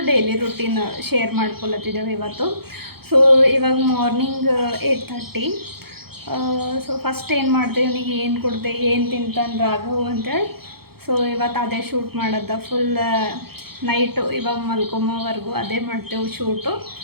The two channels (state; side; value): late; left; 0.96 ms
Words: ಡೈಲಿ ರೂಟೀನ್ ಶೇರ್ ಮಾಡ್ಕೊಳತ್ತಿದ್ದೇವೆ ಇವತ್ತು. ಸೊ ಇವಾಗ ಮಾರ್ನಿಂಗ್ 8:30. ಸೊ ಫಸ್ಟ್ ಏನು ಮಾಡಿದೆ, ಇವನಿಗೆ ಏನು ಕೊಡಿದೆ, ಏನು ತಿಂತಾನೆ ರಾಘವ್ ಅಂತೇಳಿ. ಸೊ ಇವತ್ತು ಅದೇ ಶೂಟ್ ಮಾಡೋದು ಫುಲ್ ನೈಟು, ಇವಾಗ ಮಲ್ಕೊಂಬೋವರೆಗೂ ಅದೇ ಮಾಡ್ತೇವೆ ಶೂಟು.